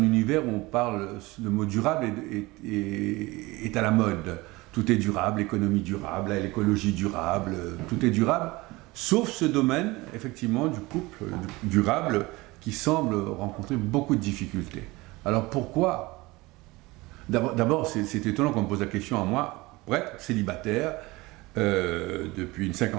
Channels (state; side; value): quieter; left; 21.7 dB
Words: univers où on parle, le mot durable est à la mode. Tout est durable, l'économie durable, l'écologie durable, tout est durable, sauf ce domaine, effectivement, du couple durable qui semble rencontrer beaucoup de difficultés. Alors pourquoi? D'abord, c'est étonnant qu'on me pose la question à moi, prêtre, célibataire, depuis une